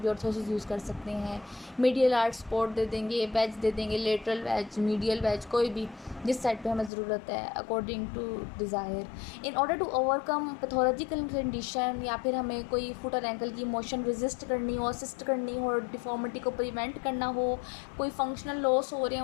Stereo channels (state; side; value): drops out; right; at 6.9 s